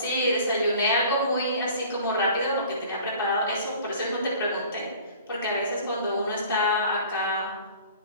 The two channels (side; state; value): both; inverted; correlation -0.46